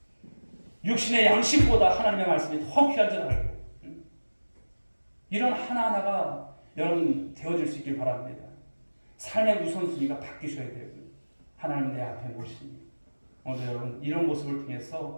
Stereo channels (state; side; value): inverted; both; correlation -1.00